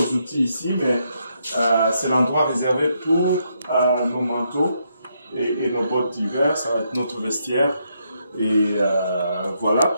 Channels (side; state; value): both; inverted; correlation -0.78